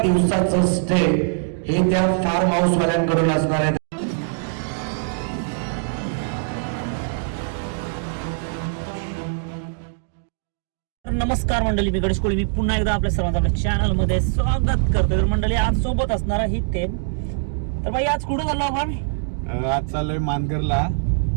दिवसाचं स्टे हे त्या फार्म हाऊस वाल्यांकडून असणार आहे. नमस्कार मंडळी, मी गणेश कोळी. मी पुन्हा एकदा आपल्या सर्वांचं आपल्या चॅनल मध्ये स्वागत करतो. तर मंडळी, आज सोबत असणार ही थेम. तर भाई आज कुठं चाललो आपण? आज चाललोय मानगरला.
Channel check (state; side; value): silent; left; digital silence